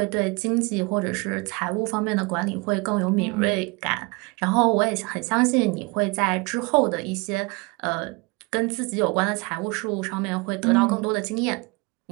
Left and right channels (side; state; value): left; quieter; 27.6 dB